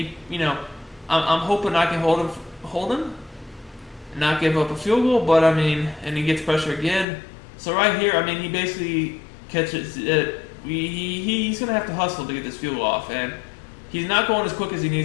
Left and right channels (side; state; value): right; drops out; at 7.1 s